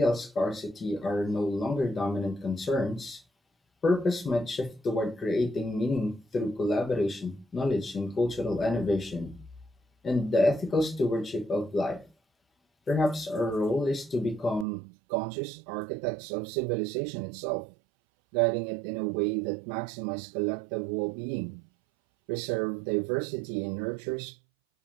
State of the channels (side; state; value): left; drops out; at 14.7 s